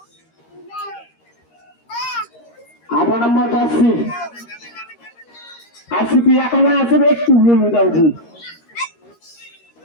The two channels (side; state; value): right; late; 13 ms